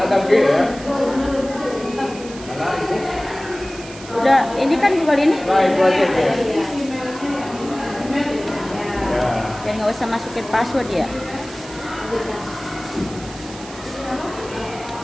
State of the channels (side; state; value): right; noise; hiss, 16 dB below the sound